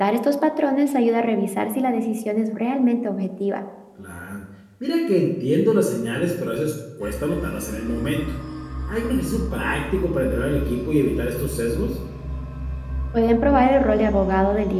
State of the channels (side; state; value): both; identical; correlation 1.00